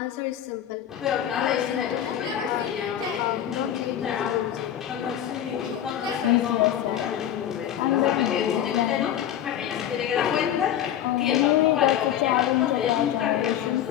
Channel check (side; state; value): right; quieter; 10.7 dB